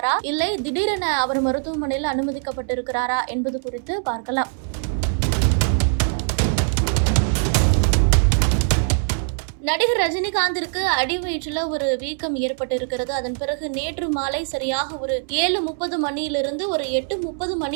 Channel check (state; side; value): silent; left; 64 dB below the other